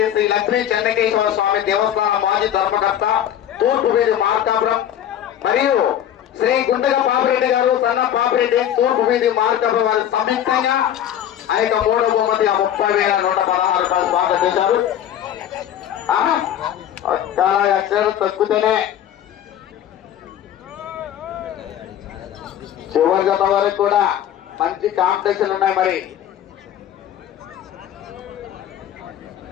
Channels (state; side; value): quieter; right; 10.7 dB